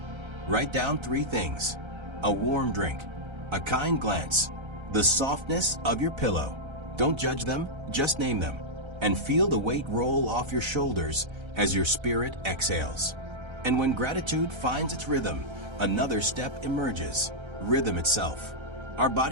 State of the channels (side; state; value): left; late; 1.3 ms